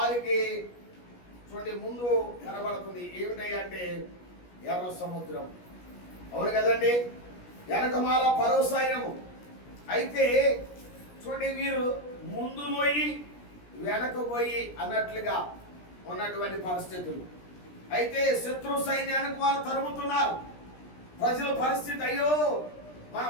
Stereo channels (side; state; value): right; late; 17 ms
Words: చూడండి ముందు కనబడుతుంది ఏమిటంటే ఎర్ర సముద్రం. అవును కదండి, వెనకమాల ఫరో సైన్యము. అయితే చూడండి వీరు ముందు పోయి వెనక పోయి అన్నట్లుగా ఉన్నటువంటి పరిస్థితులు. అయితే శత్రు సైన్యానికి వారు తరుముతున్నారు. ప్రజల పరిస్థితి, అయ్యో మనం